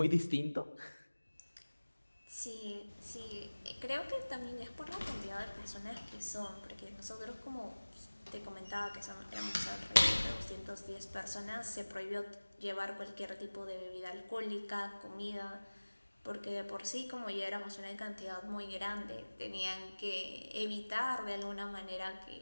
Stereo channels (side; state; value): both; inverted; correlation -1.00